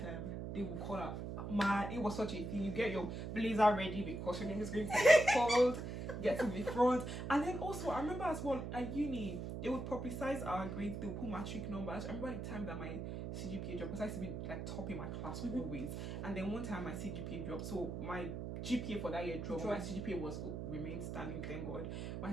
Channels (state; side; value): noise; right; hum, 5 dB below the sound